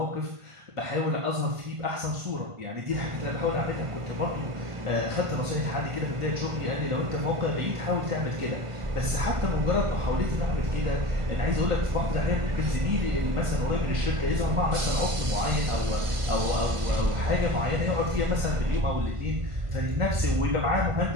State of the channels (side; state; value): left; late; 1.5 ms